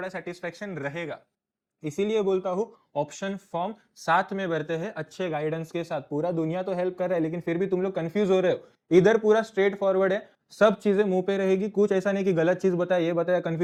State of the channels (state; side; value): identical; both; correlation 1.00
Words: सेटिस्फेक्शन रहेगा। इसीलिए बोलता हूं ऑप्शन फॉर्म साथ में भरते हैं अच्छे गाइडेंस के साथ। पूरा दुनिया तो हेल्प कर रहा है, लेकिन फिर भी तुम लोग कंफ्यूज हो रहे हो। इधर पूरा स्ट्रेट फॉरवर्ड है, सब चीजें मुंह पे रहेगी, कुछ ऐसा नहीं कि गलत चीज बताया, ये बताया,